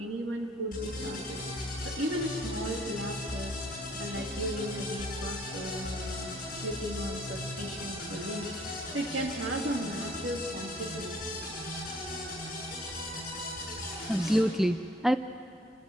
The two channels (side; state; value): both; normal; correlation 0.60